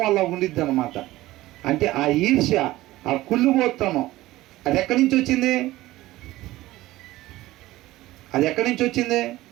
అలా ఉండిద్ది అనమాట. అంటే ఆ ఈర్ష్య, ఆ కుళ్ళుబోత్తనం అది ఎక్కడి నుంచి వచ్చింది? అది ఎక్కడి నుంచి వచ్చింది?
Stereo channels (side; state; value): left; quieter; 17.1 dB